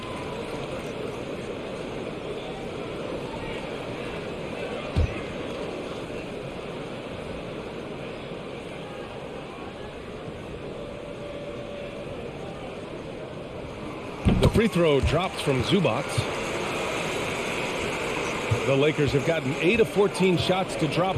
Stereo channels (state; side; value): identical; both; correlation 1.00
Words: Free throw drops from Zubac. The Lakers have gotten 8 of 14 shots to drop